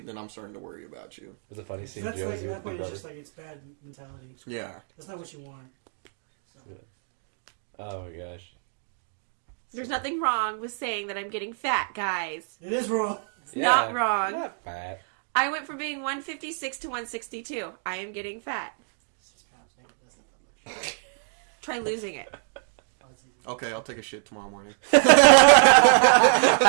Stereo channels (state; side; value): silent; left; digital silence